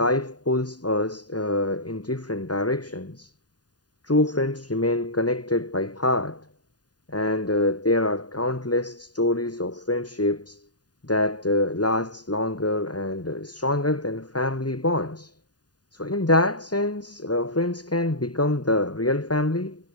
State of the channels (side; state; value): right; late; 0.69 ms